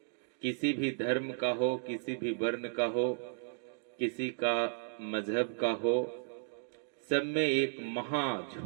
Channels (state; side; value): silent; left; digital silence